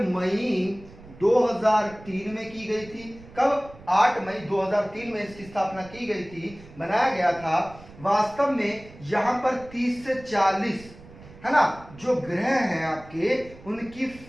मई 2003 में की गई थी। कब? 8 मई 2003 में इसकी स्थापना की गई थी, बनाया गया था। वास्तव में यहां पर 30 से 40 है ना, जो ग्रह हैं आपके, उनकी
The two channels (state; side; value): noise; right; rumble, 20 dB below the sound